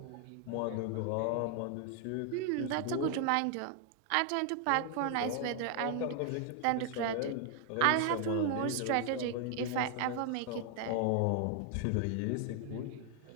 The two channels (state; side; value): different; both; correlation 0.00